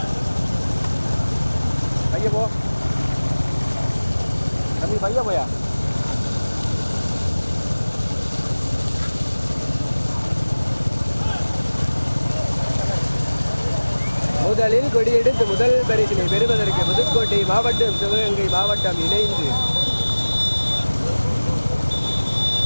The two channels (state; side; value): inverted; both; correlation -1.00